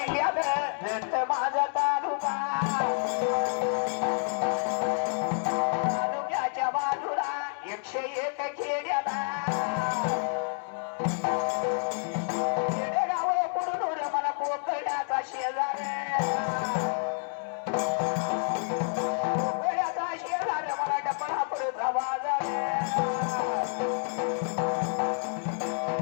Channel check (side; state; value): right; silent; 59 dB below the other